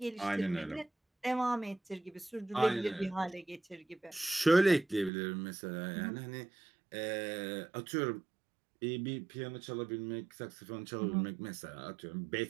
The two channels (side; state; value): left; drops out; at 5.1 s